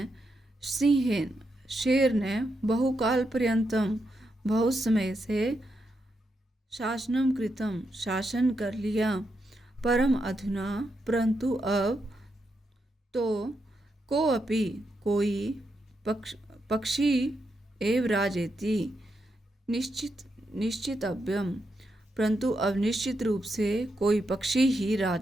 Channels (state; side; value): normal; both; correlation 0.83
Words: सिंहेन शेर ने बहुकाल पर्यंतम बहुत समय से शासनम कृतम शासन कर लिया, परम अधुना परंतु अब तो कोऽपि कोई पक्षी एव राजेति निश्चितव्यम, परंतु अब निश्चित रूप से कोई पक्षी ही